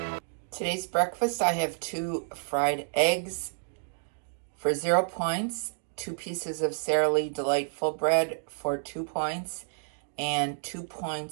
Today's breakfast, I have 2 fried eggs for 0 points, 2 pieces of Sara Lee Delightful bread for 2 points, and 2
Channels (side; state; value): left; silent; digital silence